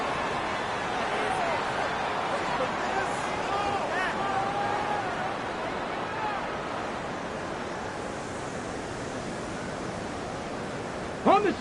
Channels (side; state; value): both; identical; correlation 1.00